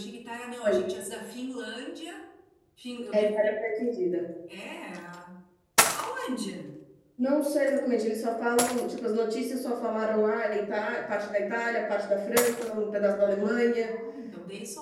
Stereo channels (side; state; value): both; identical; correlation 1.00